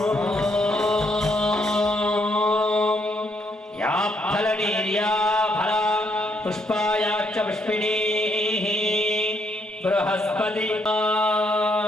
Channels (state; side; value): normal; both; correlation 0.73